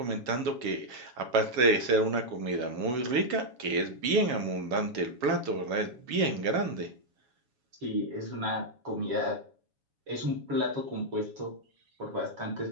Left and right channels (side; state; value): left; late; 7.2 ms